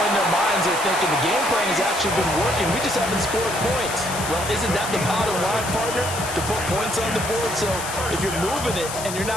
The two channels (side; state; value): left; noise; hiss, 8 dB below the sound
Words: in their minds they're thinking the game plan has actually been working. We just haven't scored points. Well, isn't that the bottom line, partner? To put points on the board. So if you're moving it and you're